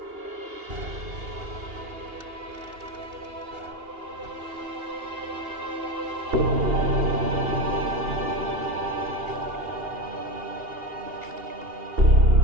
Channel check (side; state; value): left; late; 2.8 ms